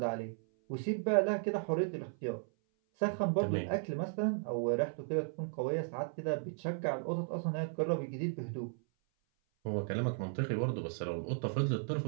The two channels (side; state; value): left; silent; 54 dB below the other